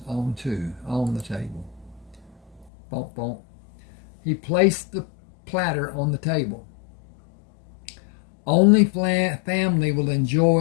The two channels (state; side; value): drops out; right; at 2.7 s